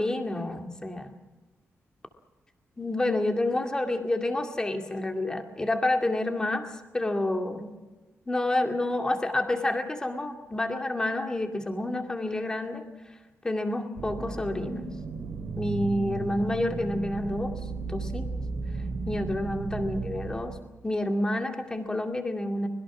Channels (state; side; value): normal; both; correlation 0.91